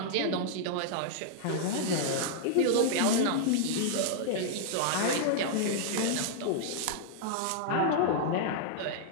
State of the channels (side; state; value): both; different; correlation -0.01